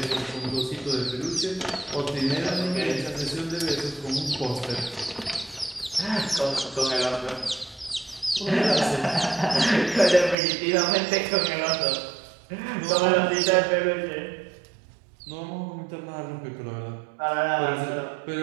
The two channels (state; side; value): drops out; left; at 10.4 s